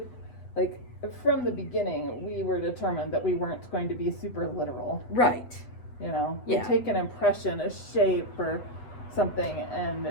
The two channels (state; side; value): late; right; 8.2 ms